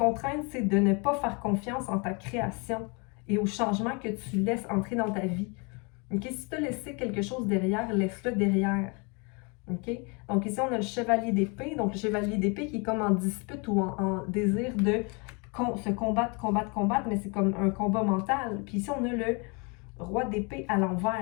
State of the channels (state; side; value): quieter; right; 31.9 dB